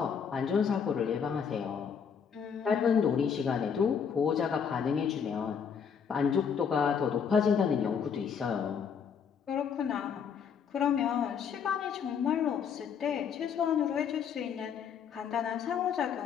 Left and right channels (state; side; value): quieter; right; 7.0 dB